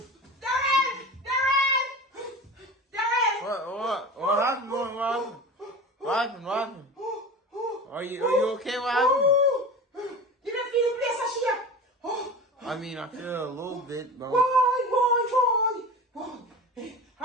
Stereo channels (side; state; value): both; normal; correlation 0.33